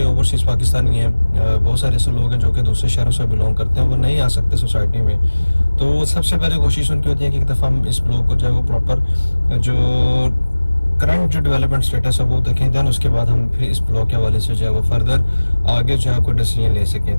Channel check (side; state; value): both; inverted; correlation -1.00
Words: ओवरसीज़ पाकिस्तानी हैं, बहुत सारे ऐसे लोग हैं जो कि दूसरे शहरों से बिलोंग करते हैं, वो नहीं आ सकते सोसाइटी में। तो सबसे पहले कोशिश उनकी होती है कि एक दफ़ा हम इस ब्लॉक को जो है वो प्रॉपर जो करंट जो डेवलपमेंट स्टेटस है वो देखें, देन उसके बाद हम फिर इस ब्लॉक के हवाले से जो है वो फर्दर आगे जो है कोई डिसीजन ले